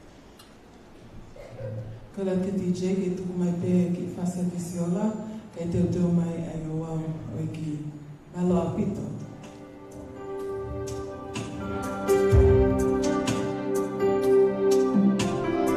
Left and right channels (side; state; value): both; identical; correlation 1.00